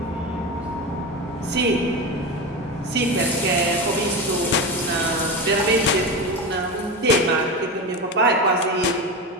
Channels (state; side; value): normal; both; correlation 0.22